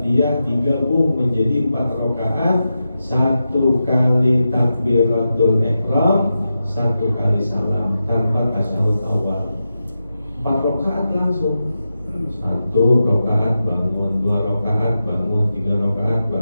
digabung menjadi 4 rakaat, 1 kali takbiratul ihram, 1 kali salam tanpa tasyahud awal. 4 rakaat langsung. 1 rakaat bangun, 2 rakaat bangun, 3 rakaat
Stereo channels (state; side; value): inverted; both; correlation -0.90